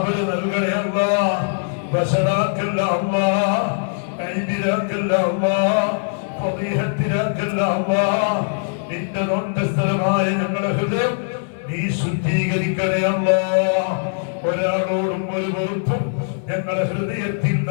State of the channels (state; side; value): silent; right; 62 dB below the other